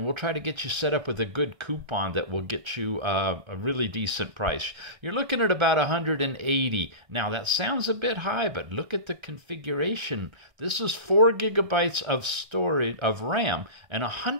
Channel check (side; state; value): left; late; 1.4 ms